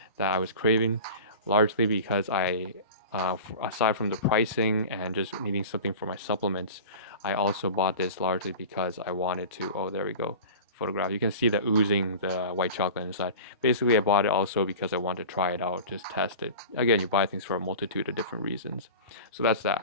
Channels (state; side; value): inverted; both; correlation -0.35